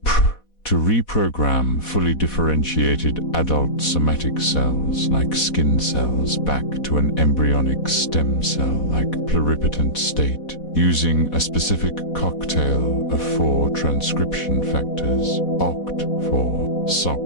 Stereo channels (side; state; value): right; late; 4.1 ms